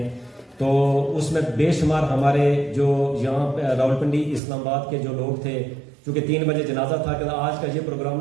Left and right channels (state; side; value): drops out; left; at 4.4 s